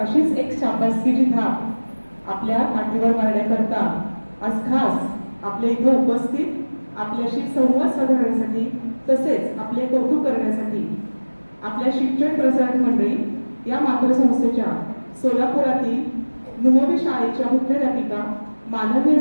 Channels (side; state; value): both; inverted; correlation -1.00